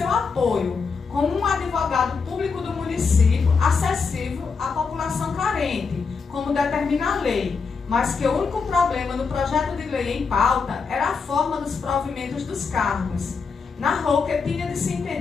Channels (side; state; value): right; quieter; 5.1 dB